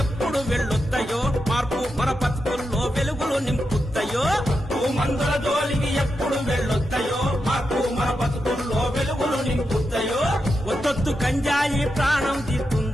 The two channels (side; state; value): both; normal; correlation 0.87